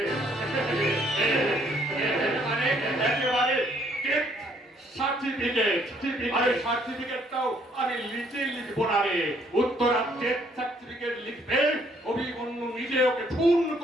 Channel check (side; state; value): both; normal; correlation 0.66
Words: একেবারে সার্টিফিকেটটাও আমি লিখবো না রে। উত্তরার ডেথ সার্টিফিকেট লিখবে অভিমন্যু নিজে ওকে খুন